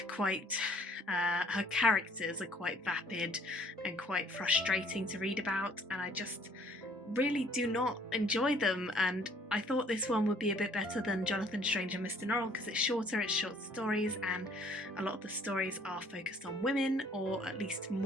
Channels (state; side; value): normal; both; correlation 0.59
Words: quite, her characters are quite vapid and quite frustrating to read about, and I just really do not enjoy them. And I thought this one would be a bit better than Jonathan Strange and Mr. Norrell because it's shorter, it's short stories, and a lot of the stories are focused on women, or at least